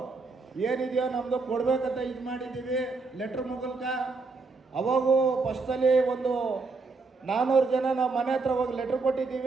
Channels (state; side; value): quieter; left; 4.0 dB